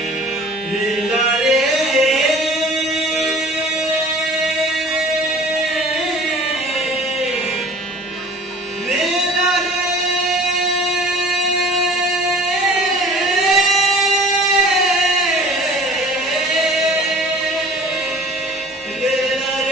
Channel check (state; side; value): normal; both; correlation 0.46